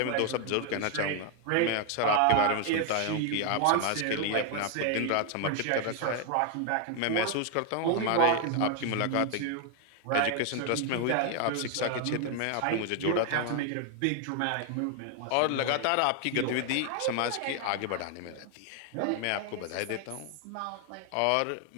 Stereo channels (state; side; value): different; both; correlation 0.00